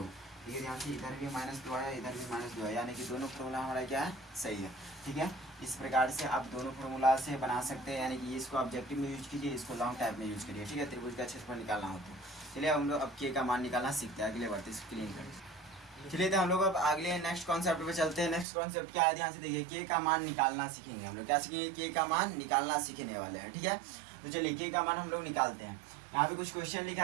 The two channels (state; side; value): drops out; left; at 18.4 s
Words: ठीक है, ध्यान से इधर भी -2 आया, इधर भी -2 आया, यानी कि दोनों फॉर्मूला हमारा क्या है सही है। ठीक है, इस प्रकार से आप दोनों फॉर्मूला से बना सकते हैं, यानी कि इसको ऑब्जेक्टिव में यूज कीजिए, इसको लॉन्ग टाइप में यूज करिए। ठीक है, त्रिभुज का क्षेत्रफल निकालना हो तो चलिए हम लोग अब के का मान निकालना सीखते हैं, अगले बढ़ते इसको क्लीन करें। चलिए तो हम लोग अब अगले नेक्स्ट कॉन्सेप्ट पे चलते हैं। नेक्स्ट कॉन्सेप्ट क्या है ध्यान से देखिए, के का मान निकालना सीखेंगे हम लोग, क्या सीखेंगे के का मान निकालना सीखने वाले हैं। ठीक है, तो चलिए के का मान हम लोग निकालते हैं। यहाँ पे कुछ क्वेश्चन